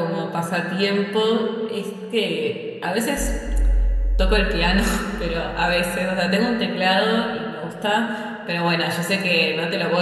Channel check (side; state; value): both; identical; correlation 1.00